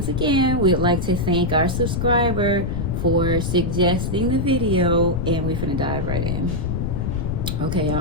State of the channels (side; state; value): left; noise; rumble, 2 dB below the sound